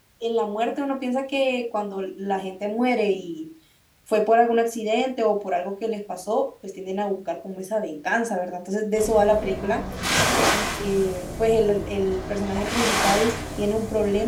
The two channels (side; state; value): both; identical; correlation 1.00